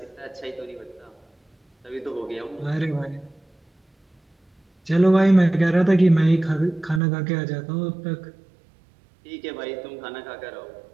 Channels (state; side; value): drops out; left; at 7.0 s